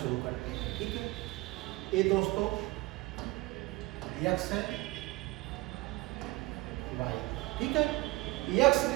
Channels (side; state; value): left; quieter; 20.8 dB